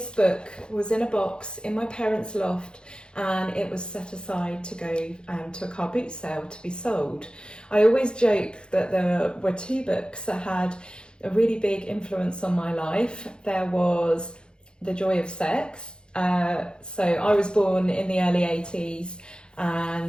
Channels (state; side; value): late; right; 0.050 ms